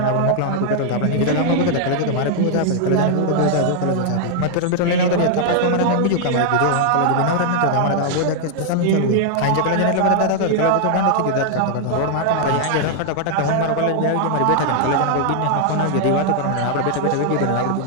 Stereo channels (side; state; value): both; different; correlation 0.00